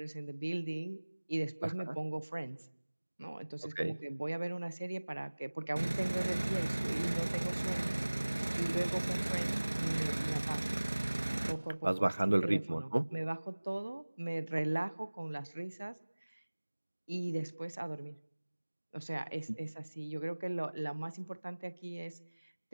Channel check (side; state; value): both; inverted; correlation -1.00